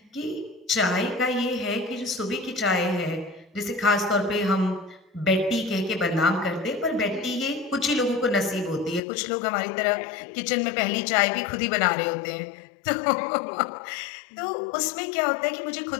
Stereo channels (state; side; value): drops out; right; at 9.0 s